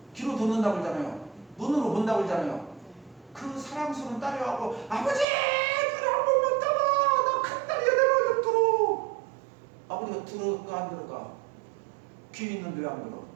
듣는다고 그러잖아요. 눈으로 본다고 그러잖아요. 그 사랑스러운 딸이 와고 아버지! 그래 한 번만 따봐! 나 큰 딸이야 내가 좀 들어! 아버지가 들을까 안 들을까? 귀 있는데 왜 안 들어?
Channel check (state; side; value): drops out; left; at 5.2 s